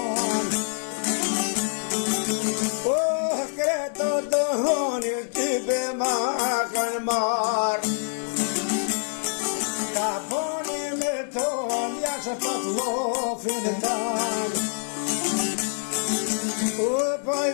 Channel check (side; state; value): right; silent; 61 dB below the other